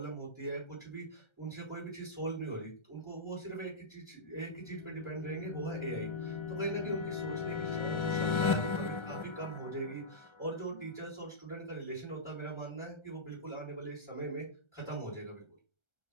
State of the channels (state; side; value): late; right; 1.3 ms